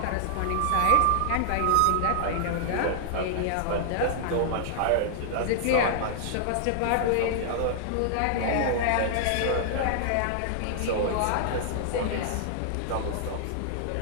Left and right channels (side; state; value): both; different; correlation -0.01